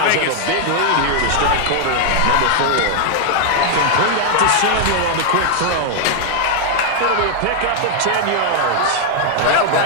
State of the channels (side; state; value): both; different; correlation 0.00